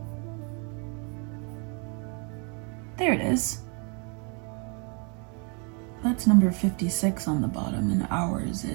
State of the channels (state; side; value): quieter; left; 35.9 dB